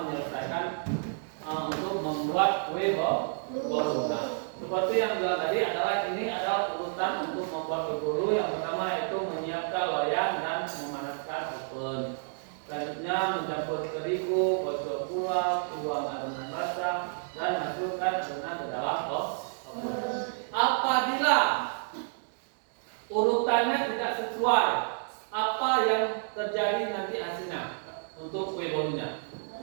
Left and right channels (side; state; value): left; silent; digital silence